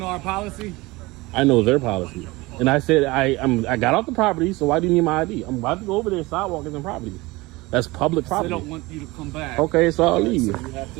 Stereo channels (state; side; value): quieter; left; 21.9 dB